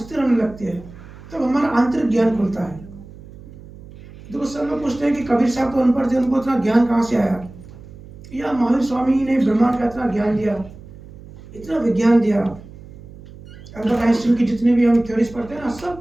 होने लगती है, तब हमारा आंतरिक ज्ञान खुलता है। देखो, सब लोग पूछते हैं कि कबीर साहब तो अनपढ़ थे, उनको इतना ज्ञान कहाँ से आया, या महावीर स्वामी ने ब्रह्मांड का इतना ज्ञान दिया, इतना विज्ञान दिया। अल्बर्ट आइंस्टीन की जितने भी हम थ्योरीज पढ़ते हैं ना,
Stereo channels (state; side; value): noise; right; hum, 18 dB below the sound